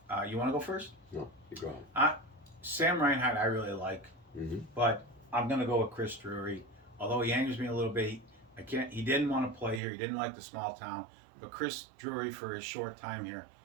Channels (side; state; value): left; drops out; at 9.8 s